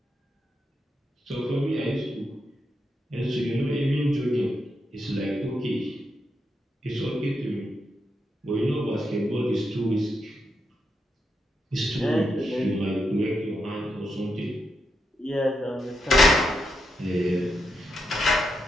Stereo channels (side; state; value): both; normal; correlation 0.83